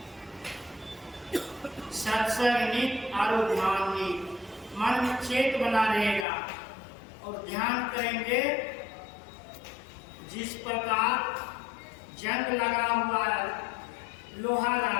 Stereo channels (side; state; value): right; drops out; at 6.2 s